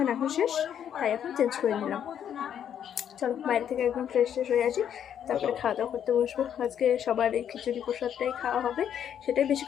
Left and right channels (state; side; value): quieter; right; 9.2 dB